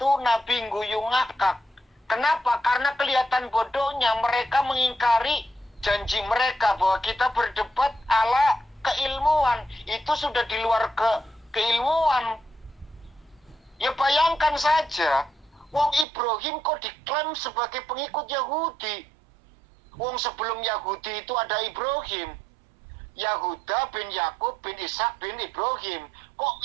Nabi guyu ngakak. Kenapa? Karena kelihatan bodohnya, mereka mengingkari janji mereka bahwa kita berdebat ala keilmuan. Itu sudah di luar keilmuan. Ya bayangkan saja, wong Ibrahim kok diklaim sebagai pengikut Yahudi. Wong sebelum Yahudi itu ada Ibrahim. Yahuda bin Yakub bin Ishak bin Ibrahim. Kok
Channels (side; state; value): left; drops out; at 16.1 s